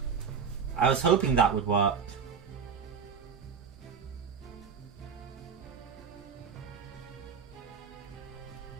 I was hoping that would work.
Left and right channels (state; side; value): quieter; left; 6.4 dB